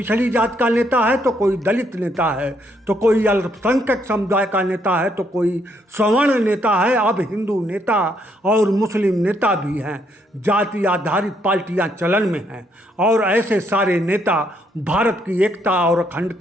जात का नेता है तो कोई दलित नेता है, तो कोई अल्पसंख्यक समुदाय का नेता है, तो कोई सवर्ण नेता है। अब हिंदू नेता और मुस्लिम नेता भी हैं। जाति आधारित पार्टियां चलन में हैं और ऐसे सारे नेता भारत की एकता और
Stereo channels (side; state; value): both; normal; correlation 0.73